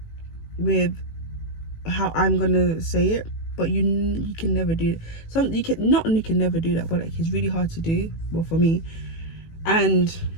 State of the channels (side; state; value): right; late; 18 ms